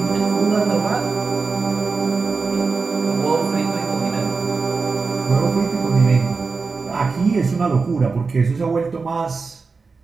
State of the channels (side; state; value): left; quieter; 4.5 dB